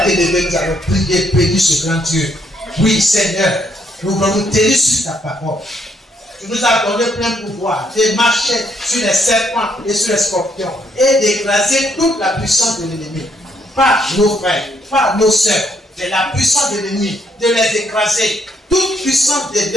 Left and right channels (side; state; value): both; normal; correlation 0.72